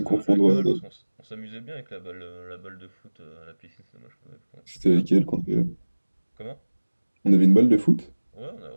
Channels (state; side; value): inverted; both; correlation -1.00